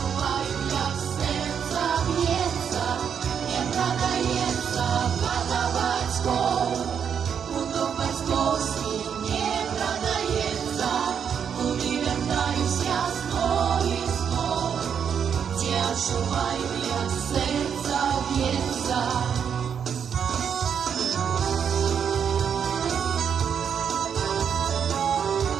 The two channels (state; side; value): quieter; left; 7.6 dB